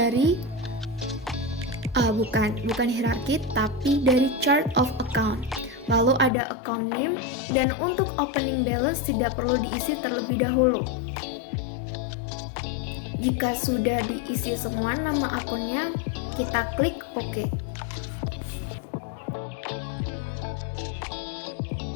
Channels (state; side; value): drops out; right; at 6.3 s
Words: bukan hierarki tapi dari chart of account. Lalu ada account name dan untuk opening balance tidak perlu diisi terlebih dahulu. Jika sudah diisi semua nama akunnya, kita klik OK.